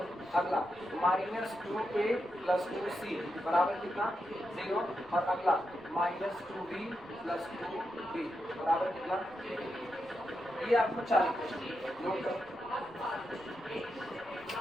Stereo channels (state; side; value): noise; left; rumble, 26 dB below the sound